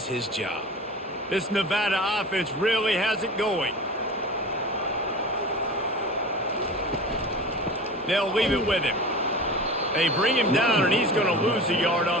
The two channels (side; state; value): both; normal; correlation 0.34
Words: his job. This Nevada offense really has it going. They'll leave it with him. They bring him down, and he's going to lose a yard